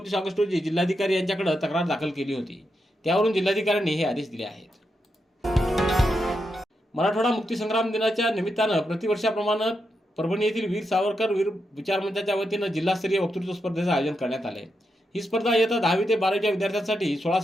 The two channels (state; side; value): normal; both; correlation 0.85